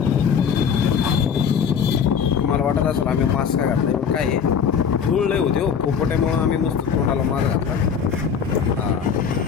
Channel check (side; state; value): right; quieter; 7.0 dB